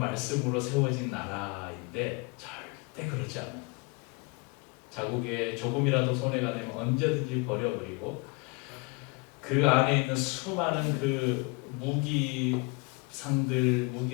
세워진 나라인데 절대 그렇지 않아요. 자국에 조금이라도 손해가 되면 언제든지 버려버리고 그 안에 있는 수많은 그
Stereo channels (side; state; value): right; quieter; 29.4 dB